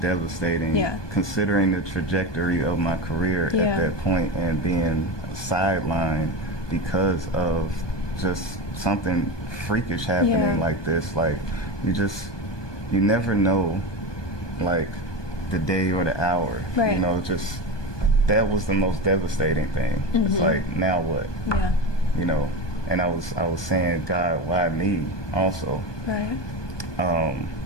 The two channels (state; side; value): late; right; 1.2 ms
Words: Yeah. Considering the trajectory of my career at that point and being sidelined because of just something freakish happening like this. Like, you never know, like, the day or the hour. Right. You know, just, that was the most devastating thing. It's like, now what? Yeah. You know, and I was saying, God, why me also? Right.